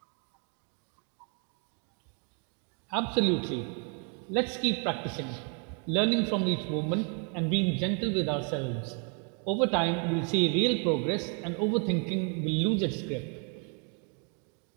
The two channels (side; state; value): left; quieter; 39.0 dB